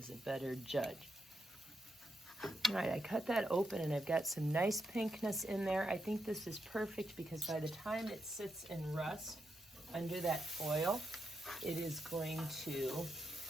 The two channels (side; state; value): both; normal; correlation 0.84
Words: a better judge. All right, I cut that open and I've got some nice pinkness in there. I think this is perfect because by the time it sits in rust under that foil, it is going to